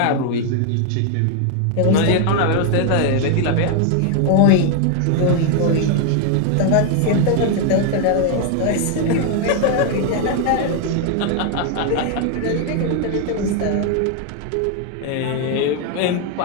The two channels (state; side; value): different; both; correlation 0.00